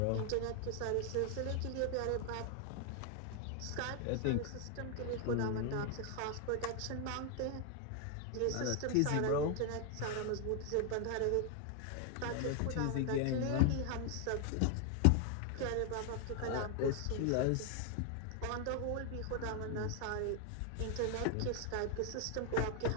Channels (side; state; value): both; different; correlation 0.00